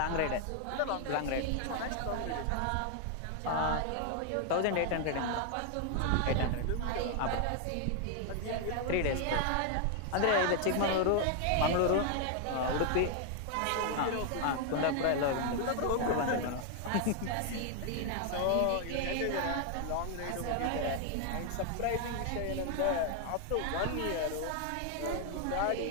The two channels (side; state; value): both; different; correlation 0.00